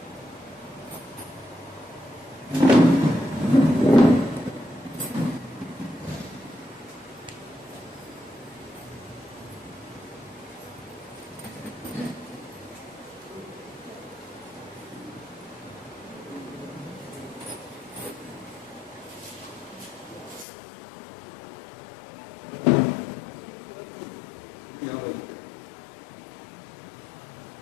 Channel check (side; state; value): right; drops out; at 20.5 s